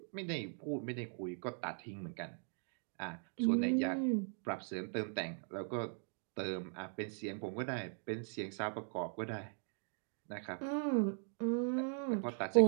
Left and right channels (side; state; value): left; silent; 51 dB below the other